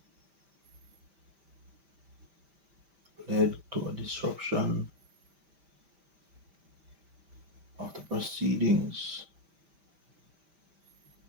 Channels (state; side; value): late; left; 5.1 ms